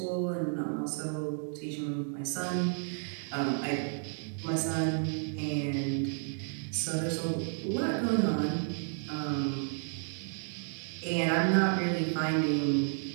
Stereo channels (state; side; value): silent; left; 56 dB below the other